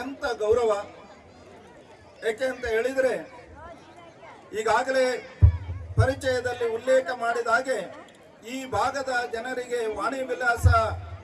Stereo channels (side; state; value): both; identical; correlation 1.00